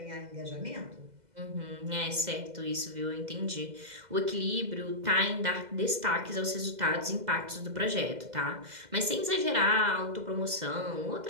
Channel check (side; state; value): left; late; 2.0 ms